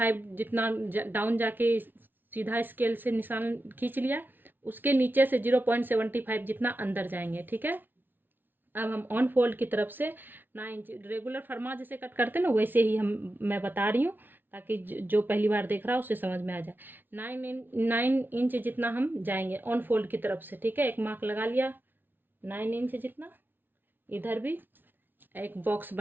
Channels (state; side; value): late; left; 0.093 ms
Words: जितना डाउन जाके सीधा स्केल से निशान खींच लिया, उसके नीचे से 0.75 जितना अंदर जाएंगे। ठीक है, अब हम ऑन फोल्ड की तरफ से 9 इंच रेगुलर फरमा जैसे कट करते हैं ना, वैसे ही मैं बता रही हूँ ताकि जो पहली बार देख रहा है उसे समझ में आ जाए। 9 इंच जितना हम जाएंगे ऑन फोल्ड की तरफ से। ठीक है, एक मार्क लगा लिया 9 इंच जितना, इधर भी एक बॉक्स